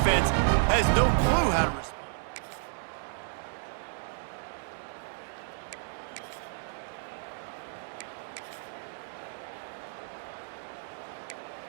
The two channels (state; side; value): silent; left; 57 dB below the other